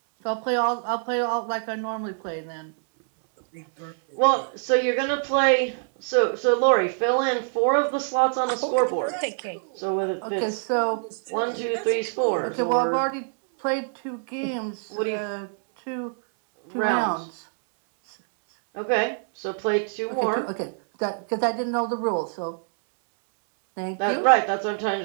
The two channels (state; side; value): silent; left; 62 dB below the other